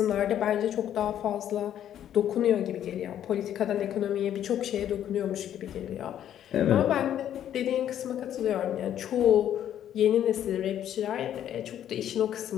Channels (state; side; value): quieter; right; 10.6 dB